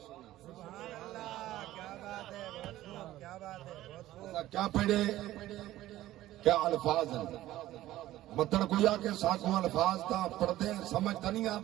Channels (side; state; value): left; quieter; 14.9 dB